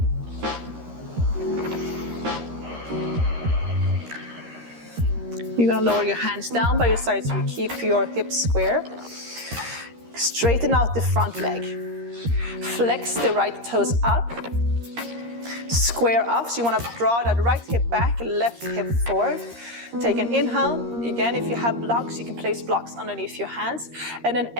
You're gonna lower your hands down by your sides so you keep your hips square. Straighten out the front leg. Flex the right toes up. Square up, so you wanna draw that right hip back, left hip forward. Take an inhale. Again, if you have blocks, you can place blocks underneath your hands. And then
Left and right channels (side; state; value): left; late; 13 ms